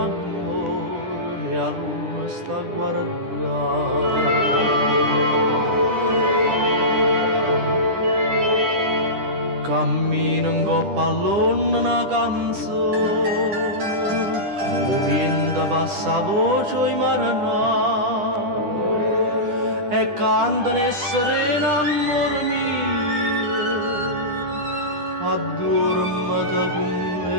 e a luna sta a guardare. Cammino in coppa all'onna una canzone, o vento passa a voce i maranai e cantano e serena amore mio. Addormata con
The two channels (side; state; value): left; late; 10 ms